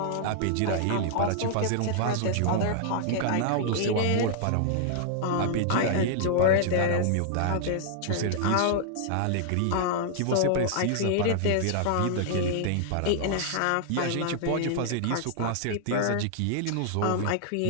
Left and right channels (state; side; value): different; both; correlation -0.01